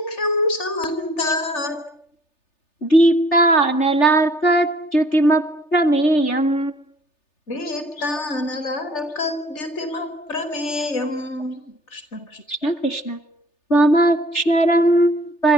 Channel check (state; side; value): late; right; 3.3 ms